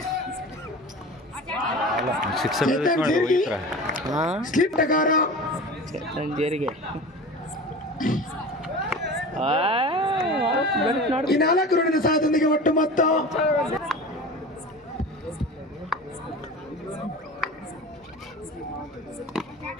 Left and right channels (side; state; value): both; normal; correlation 0.34